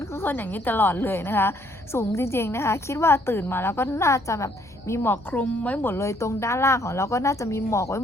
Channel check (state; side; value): noise; left; hum, 28 dB below the sound